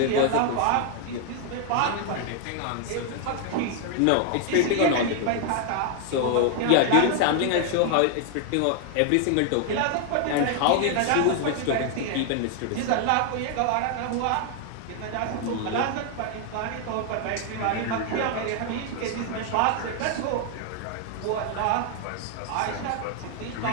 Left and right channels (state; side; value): different; both; correlation 0.00